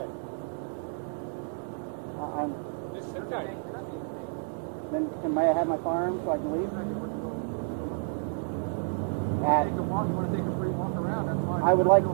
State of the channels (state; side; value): silent; left; 58 dB below the other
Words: I'm. It's okay. Then may I have my firearm so I can leave? Take a walk. You want to take a free walk around? That's fine. I would like